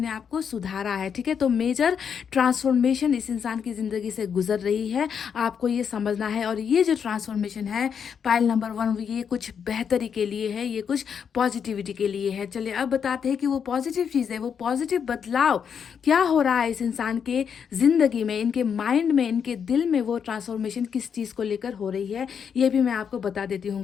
आप को सुधारा है। ठीक है, तो मेजर ट्रांसफॉर्मेशन इस इंसान की ज़िंदगी से गुजर रही है, आपको ये समझना है। और ये जो ट्रांसफॉर्मेशन है पाइल नंबर 1, ये कुछ बेहतरी के लिए है, ये कुछ पॉजिटिविटी के लिए है। चलिए अब बताते हैं कि वो पॉजिटिव चीज़ है, वो पॉजिटिव बदलाव क्या हो रहा है इस इंसान के ज़िंदगी में, इनके माइंड में, इनके दिल में वो ट्रांसफॉर्मेशन किस चीज़ को लेकर हो रही है, ये भी मैं आपको बता देती हूँ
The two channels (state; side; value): quieter; right; 7.2 dB